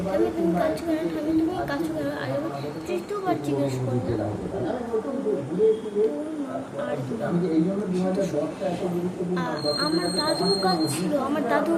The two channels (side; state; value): both; identical; correlation 1.00